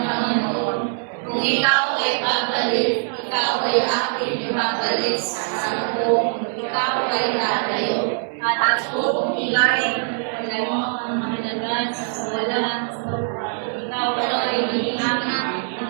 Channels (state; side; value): silent; left; 61 dB below the other